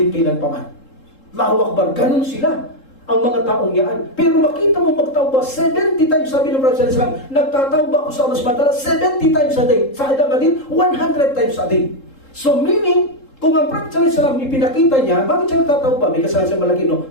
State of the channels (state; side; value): late; right; 3.7 ms